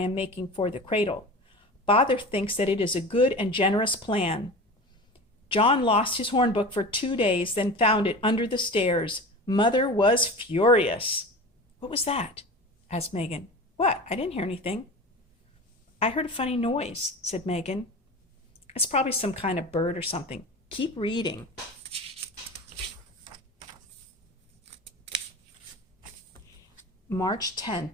making for the cradle. Father thinks that it is a good and generous plan. John lost his hornbook for 2 days, then found it under the stairs. Mother was furious. What was that? Asked Megan. What? I didn't hear anything. I heard a funny noise, said Megan. It's probably some kind of bird or something. Keep reading. March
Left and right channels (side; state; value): both; normal; correlation 0.33